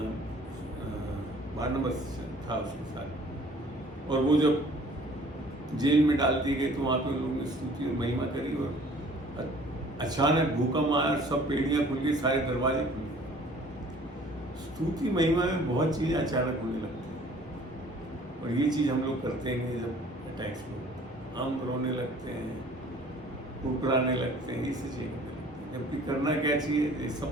बारनबास था उसके साथ, और वो जब जेल में डाल दी गई तो वहां पे उन लोगों ने स्तुति और महिमा करी, और अचानक भूकंप आया, सब पेड़ियां खुल गई, सारे दरवाजे खुल गए। स्तुति महिमा में बहुत चीजें अचानक होने लगती हैं, और ये चीज हम लोग करते हैं जब अटैक्स में हम रोने लगते हैं, कुकराने लगते हैं, ये चीजें करते हैं। जबकि करना क्या चाहिए, ये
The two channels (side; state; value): both; normal; correlation 0.53